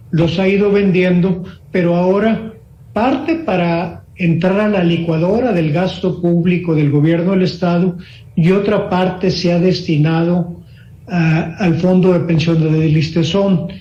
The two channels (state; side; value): identical; both; correlation 1.00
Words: los ha ido vendiendo, pero ahora parte para entrar a la licuadora del gasto público del gobierno del Estado y otra parte se ha destinado al Fondo de Pensiones del Listezón.